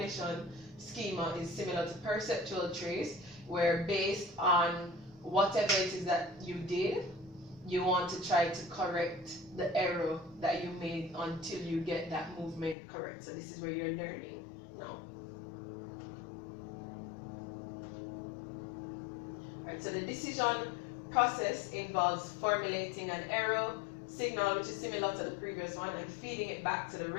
schema is similar to perceptual trace, where based on whatever it is that you did, you want to try to correct the error that you made until you get that movement correct. So this is where you're learning now. Right, so the decision process involves formulating an error signal, which is similar to the previous one, and feeding it back to the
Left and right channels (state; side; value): drops out; right; at 12.8 s